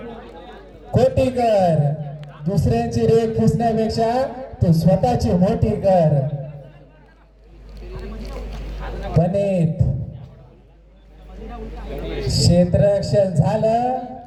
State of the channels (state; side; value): identical; both; correlation 1.00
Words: खोटी कर. दुसऱ्यांची रेख पुसण्यापेक्षा तू स्वतःची मोठी कर. गणित क्षेत्ररक्षण झालं